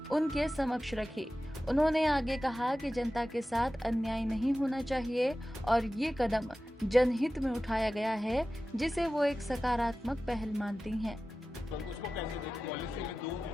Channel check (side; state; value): both; normal; correlation 0.95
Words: उनके समक्ष रखी। उन्होंने आगे कहा कि जनता के साथ अन्याय नहीं होना चाहिए और ये कदम जनहित में उठाया गया है, जिसे वो एक सकारात्मक पहल मानती हैं। तो उसको कैसे देखते? पॉलिसी में दो